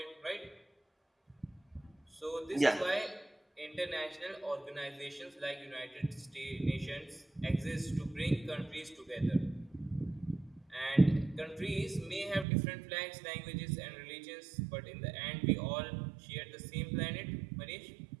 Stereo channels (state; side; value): drops out; left; at 12.5 s